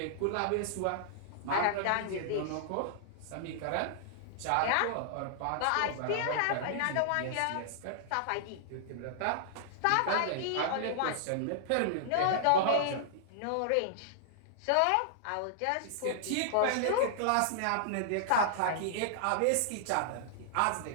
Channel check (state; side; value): different; both; correlation -0.01